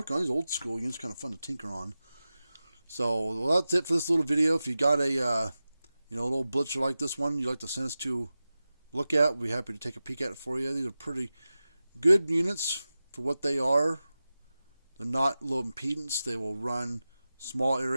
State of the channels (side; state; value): both; inverted; correlation -0.95